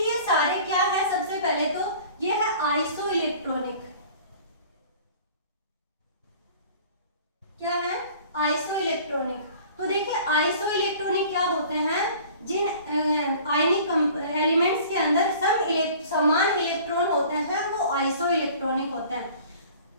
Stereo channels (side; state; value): both; inverted; correlation -0.47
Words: ये सारे क्या है, सबसे पहले तो ये है आइसो इलेक्ट्रॉनिक, क्या है आइसो इलेक्ट्रॉनिक। तो देखिए आइसो इलेक्ट्रॉनिक क्या होते हैं, जिन आयनिक एलिमेंट्स के अंदर समान इलेक्ट्रॉन होते हैं वो आइसो इलेक्ट्रॉनिक होते हैं।